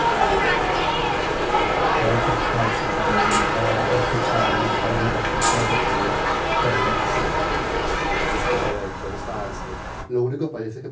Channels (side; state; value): both; identical; correlation 1.00